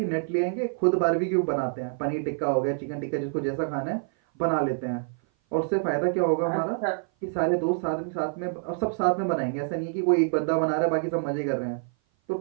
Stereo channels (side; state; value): left; silent; 56 dB below the other